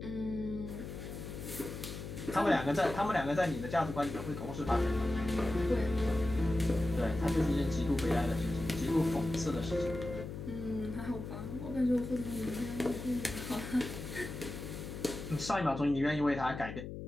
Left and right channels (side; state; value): left; noise; hum, 8 dB below the sound